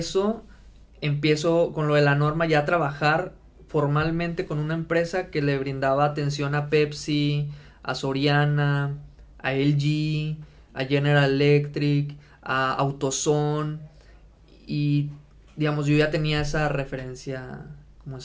empiezo con lo de la norma ya a trabajar formalmente con una empresa que le brindaba atención a Pepsi, a Soriana, a LG, a General Electric, a AutoZone, y digamos, yo ya tenía esa referencia, como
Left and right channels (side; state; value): both; identical; correlation 1.00